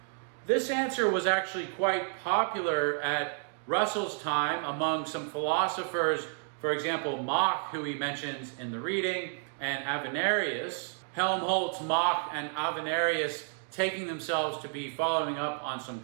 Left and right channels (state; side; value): silent; left; 57 dB below the other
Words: This answer was actually quite popular at Russell's time among some philosophers, for example, Mach, who he mentions in the reading, and Avenarius. Helmholtz, Mach, and Avenarius taking themselves to be following up on some